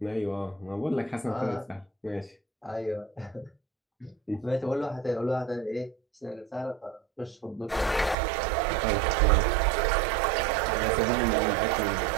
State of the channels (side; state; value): left; drops out; at 8.2 s